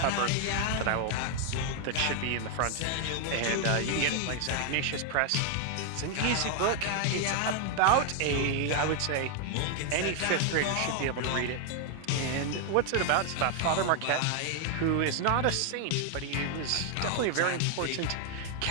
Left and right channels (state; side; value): different; both; correlation 0.00